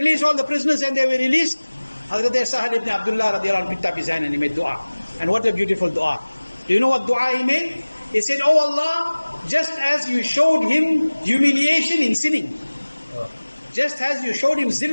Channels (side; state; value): both; inverted; correlation -1.00